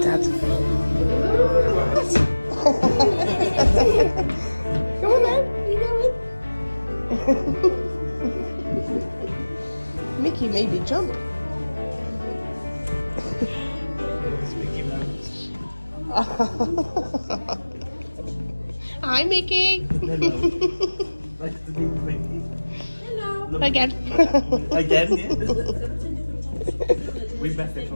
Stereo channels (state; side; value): inverted; both; correlation -1.00